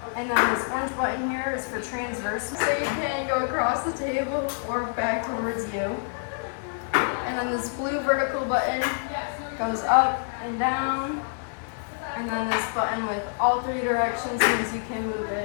And then this orange button here is for transverse, so you can go across the table or back towards you. And then this blue vertical button goes up and down. And then this button with all three directions means you can move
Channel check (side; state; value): right; silent; digital silence